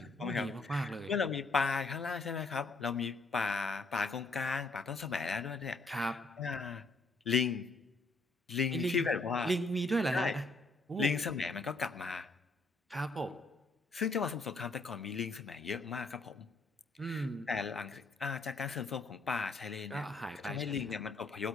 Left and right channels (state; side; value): quieter; right; 3.2 dB